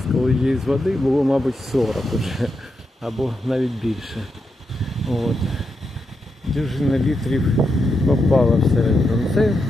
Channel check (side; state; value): both; normal; correlation 0.85